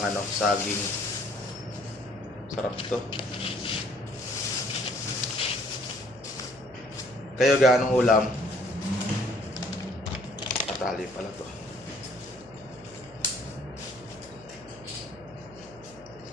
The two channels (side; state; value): left; noise; hum, 24 dB below the sound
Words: saging. Sarap to. Kayo gaanong ulam? Patali pala to.